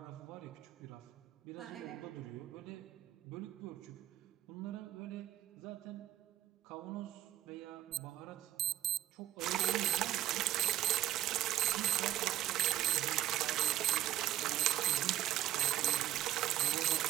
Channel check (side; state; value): left; quieter; 13.0 dB